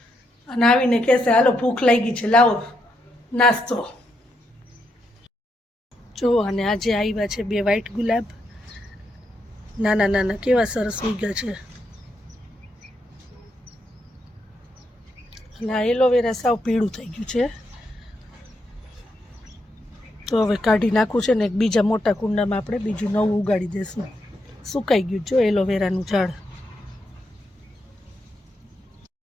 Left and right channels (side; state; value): both; normal; correlation 0.81